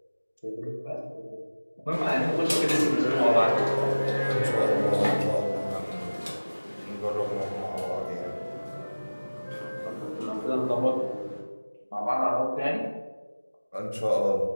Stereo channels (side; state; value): both; inverted; correlation -1.00